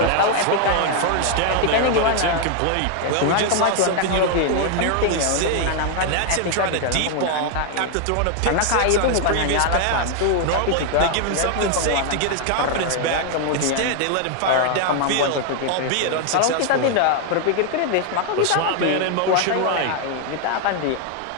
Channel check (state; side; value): different; both; correlation 0.00